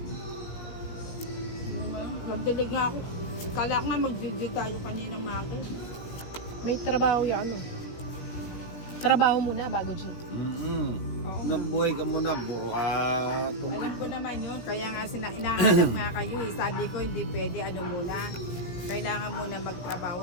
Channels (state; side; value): late; right; 17 ms